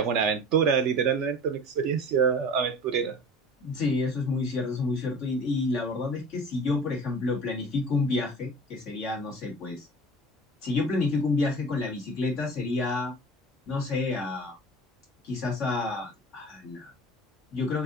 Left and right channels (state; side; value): normal; both; correlation 0.39